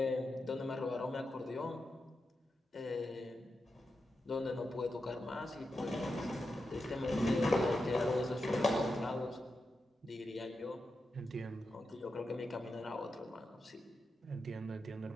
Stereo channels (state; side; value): normal; both; correlation 0.88